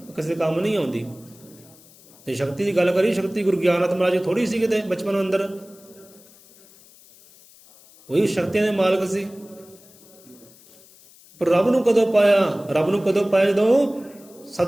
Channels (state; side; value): noise; left; hiss, 25 dB below the sound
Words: ਕਿਸੇ ਕੰਮ ਨਹੀਂ ਆਉਂਦੀ। ਤੇ ਸ਼ਕਤੀ ਦੀ ਗੱਲ ਕਰੀ, ਸ਼ਕਤੀ ਗੁਰੂ ਗਿਆਨਨਾਥ ਮਹਾਰਾਜ ਥੋੜੀ ਸੀ ਕਿਤੇ ਬਚਪਨ ਅੰਦਰ, ਉਹੀ ਸ਼ਕਤੀਆਂ ਦੇ ਮਾਲਕ ਸੀ। ਪਰ ਰੱਬ ਨੂੰ ਕਦੋਂ ਪਾਇਆ? ਰੱਬ ਨੂੰ ਕਦੋਂ ਪਾਇਆ? ਜਦੋਂ